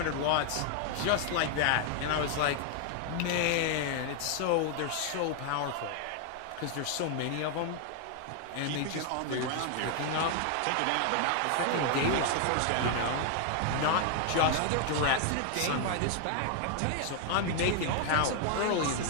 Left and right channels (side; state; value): both; different; correlation 0.00